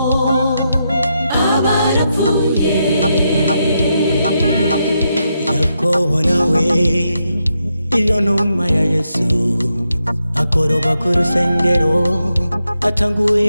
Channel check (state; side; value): inverted; both; correlation -0.83